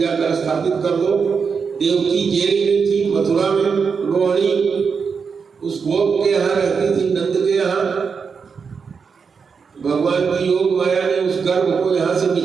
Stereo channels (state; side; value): quieter; left; 5.7 dB